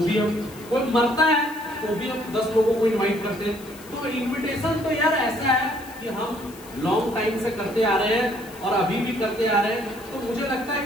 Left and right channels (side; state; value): left; noise; hiss, 20 dB below the sound